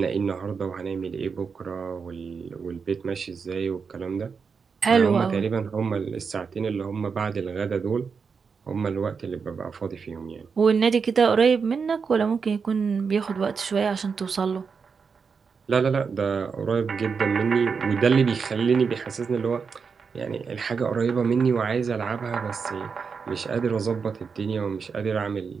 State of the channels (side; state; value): left; quieter; 5.6 dB